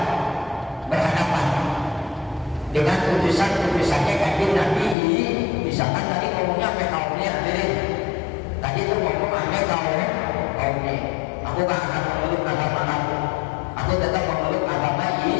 berhadapan dengan utusannya kanjeng Nabi. Misalkan tadi ngomongnya sampai kaumnya hadirin, tadi itu ngomong sampai kaumnya, aku gak akan memeluk agama kamu, aku tetap memeluk agama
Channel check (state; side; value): drops out; right; at 5.0 s